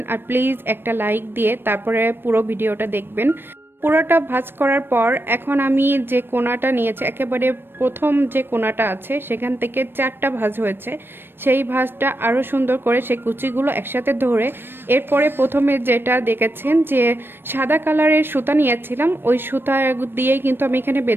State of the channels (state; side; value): late; left; 0.10 ms